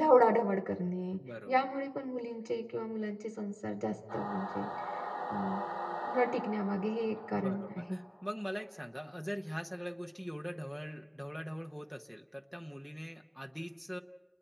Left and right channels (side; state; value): both; identical; correlation 1.00